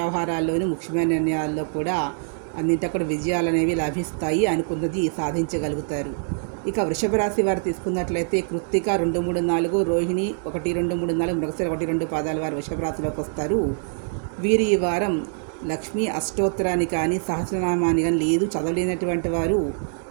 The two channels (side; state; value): left; silent; digital silence